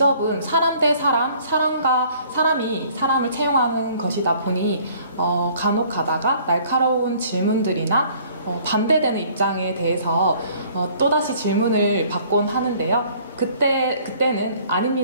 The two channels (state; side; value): inverted; both; correlation -0.56